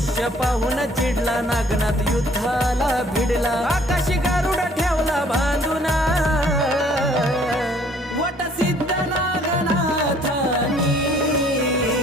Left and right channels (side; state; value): both; normal; correlation 0.59